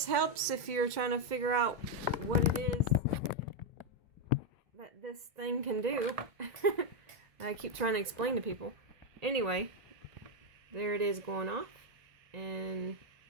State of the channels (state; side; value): late; left; 2.2 ms